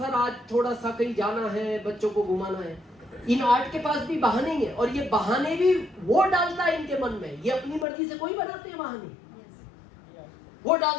आज थोड़ा सा कहीं जाना है, बच्चों को घुमाना है। इन 8 के पास भी बहाने हैं, और ये बहाने भी वो डालता है इनके मन में। ये अपनी मर्जी से कोई बनाते हैं बहाने, वो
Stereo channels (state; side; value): drops out; right; at 7.9 s